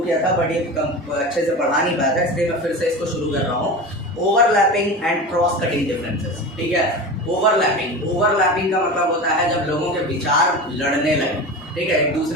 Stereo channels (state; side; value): normal; both; correlation 0.29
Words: किया था बट ये अच्छे से पढ़ा नहीं पाया था, इसलिए मैं फिर से इसको शुरू कर रहा हूँ. Overlapping and cross cutting differences. ठीक है, ओवरलैपिंग का मतलब होता है जब लोगों के विचार लड़ने लगे. ठीक है, एक